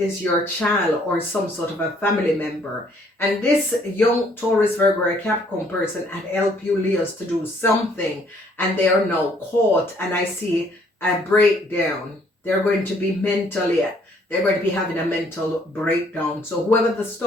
your child or some sort of a family member. And this young Taurus, Virgo, or Capricorn person had helped you Leos to do something, and they are now caught. And I see a breakdown. They're going to be they're going to be having a mental breakdown. So whoever the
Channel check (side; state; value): both; normal; correlation 0.63